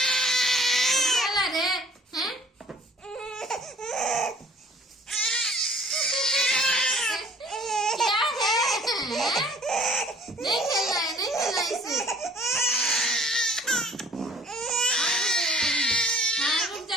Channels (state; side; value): normal; both; correlation 0.53